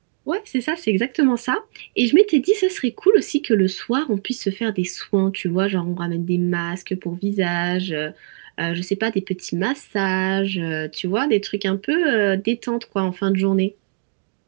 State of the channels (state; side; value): silent; left; digital silence